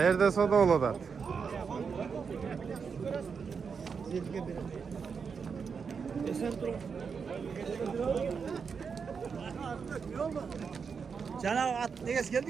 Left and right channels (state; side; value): quieter; left; 5.9 dB